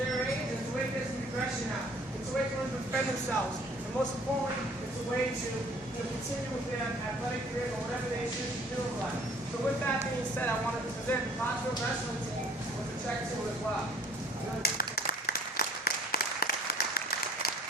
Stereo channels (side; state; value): both; normal; correlation 0.54